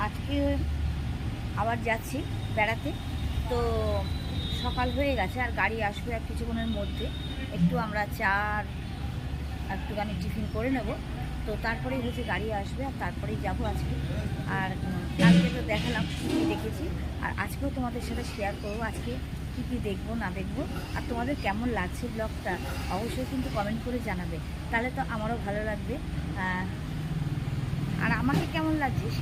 আজকে আবার যাচ্ছি বেড়াতে। তো সকাল হয়ে গেছে, আর গাড়ি আসবে আর কিছুক্ষণের মধ্যে। একটু আমরা একটুখানি টিফিন করে নেব, তো তারপরেই হচ্ছে গাড়ি আসবে, আর তারপরেই যাব আজকে। আর কালকে তো দেখালাম কী কী দেখেছি, আর আজকেও তোমাদের সাথে শেয়ার করবো আজকে কী কী দেখবো না দেখবো। আর তোমাদের কেমন লাগছে ব্লগটা অবশ্যই কিন্তু কমেন্ট করে জানাবে, তাহলে তো আমারও ভালো লাগবে। আর আমাকে কেমন লাগছে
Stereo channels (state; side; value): identical; both; correlation 1.00